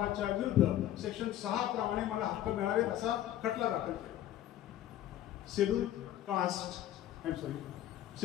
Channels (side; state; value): right; quieter; 12.5 dB